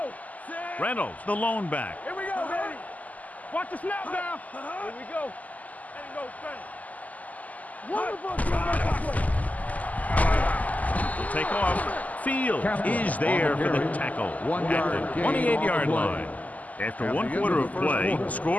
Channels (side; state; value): right; late; 0.076 ms